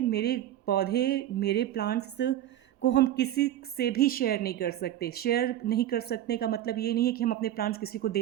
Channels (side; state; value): left; quieter; 12.3 dB